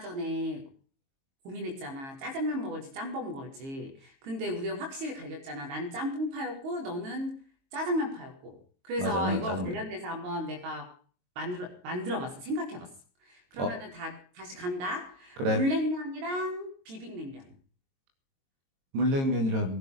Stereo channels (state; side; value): late; left; 22 ms